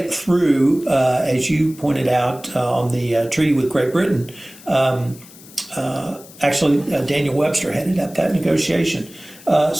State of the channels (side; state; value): left; noise; hiss, 21 dB below the sound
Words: through, as you pointed out, on the treaty with Great Britain. Actually, Daniel Webster headed up that negotiation.